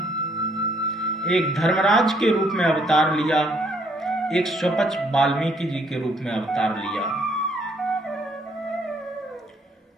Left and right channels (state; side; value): normal; both; correlation 0.67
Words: एक धर्मराज के रूप में अवतार लिया, एक स्वपच वाल्मीकि जी के रूप में अवतार लिया।